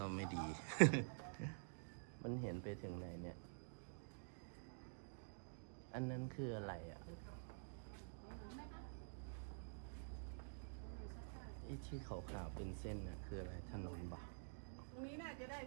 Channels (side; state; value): left; silent; digital silence